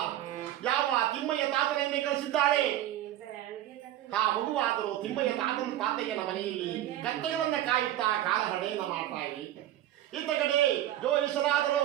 ಯಾವ ತಿಮ್ಮಯ್ಯ ತಾತನೆಯನ್ನೇ ಕಳಿಸಿದ್ದಾಳೆ. ಆ ಮಗುವಾದರೂ ತಿಮ್ಮಯ್ಯ ತಾತಯ್ಯನ ಮನೆಯಲ್ಲಿ ಕತ್ತೆಗಳನ್ನ ಕಾಯುತ್ತಾ ಕಾಲಹರಣೆಯನ್ನ ಮಾಡ್ತಾ ಇರಿ. ಇತ್ತ ಕಡೆ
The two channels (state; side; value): quieter; left; 13.1 dB